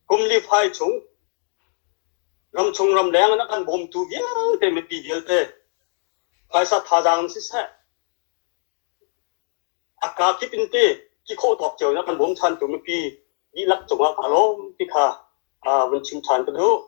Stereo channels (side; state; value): right; silent; digital silence